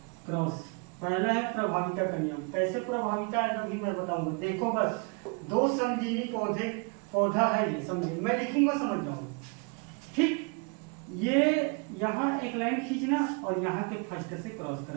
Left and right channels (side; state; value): left; quieter; 33.8 dB